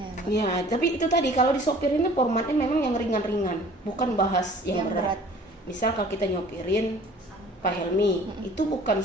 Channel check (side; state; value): both; normal; correlation 0.49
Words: ya, Mbak? Ya, tapi itu tadi kalau Disupirin ini formatnya memang yang ringan-ringan, bukan bahas yang berat. Misal kalau kita nyopirin Pak Helmi, itu bukan